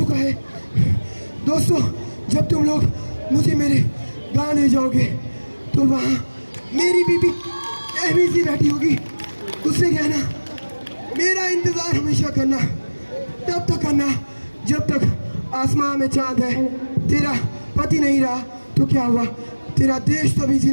है। दोस्तों, जब तुम लोग मुझे मेरे गाँव ले जाओगे तो वहाँ मेरी बीबी अहमी सी बैठी होगी। उससे कहना मेरा इंतज़ार हमेशा करना, तब तक करना जब तक आसमान में चांद है। तेरा पति नहीं रहा तो क्या हुआ, तेरा देश तो भी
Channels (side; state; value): both; inverted; correlation -1.00